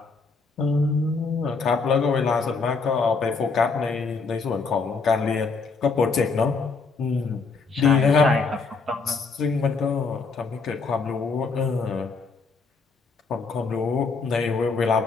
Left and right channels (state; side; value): quieter; right; 4.4 dB